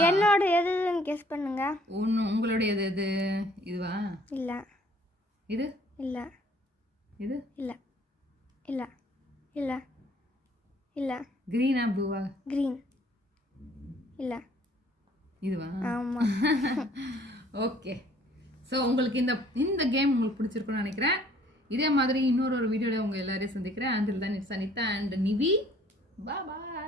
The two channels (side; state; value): both; normal; correlation 0.59